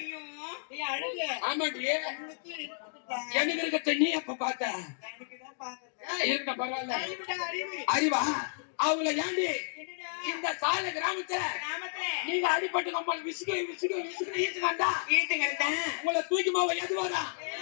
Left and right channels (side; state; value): right; silent; digital silence